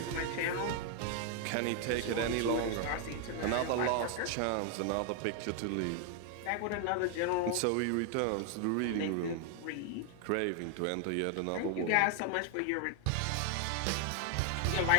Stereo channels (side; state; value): both; different; correlation 0.00